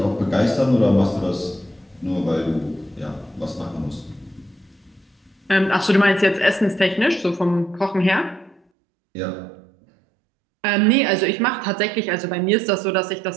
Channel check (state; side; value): drops out; left; at 8.6 s